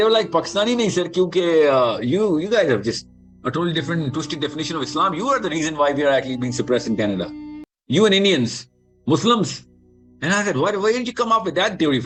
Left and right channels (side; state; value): both; identical; correlation 1.00